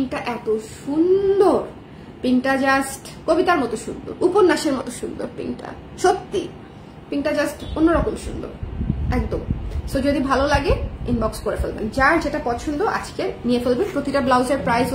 এত সুন্দর, পিঙ্কটা জাস্ট কবিতার মতো সুন্দর, উপন্যাসের মতো সুন্দর পিঙ্কটা, সত্যি পিঙ্কটা জাস্ট অন্যরকম সুন্দর একদম। সো যদি ভালো লাগে ইনবক্স করে ফেলবেন, যার যেটা পছন্দ আজকে নিয়ে ফেলবেন। প্রতিটা ব্লাউজের প্রাইস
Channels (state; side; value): identical; both; correlation 1.00